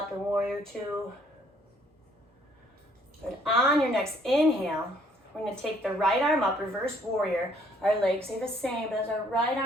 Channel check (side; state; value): both; normal; correlation 0.64